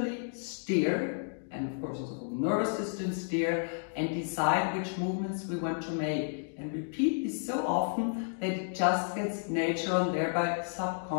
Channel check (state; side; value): silent; right; digital silence